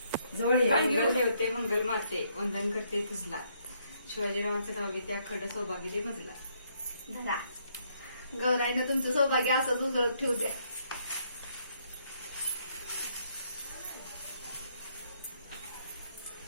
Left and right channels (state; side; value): inverted; both; correlation -0.71